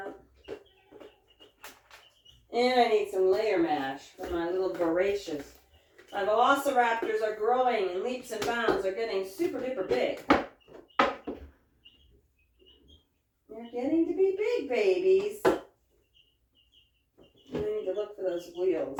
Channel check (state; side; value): identical; both; correlation 1.00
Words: And I need some layer mash for my little voracious. My velociraptors are growing in leaps and bounds. They're getting super duper big. They're getting to be big babies. I need to look for those wheels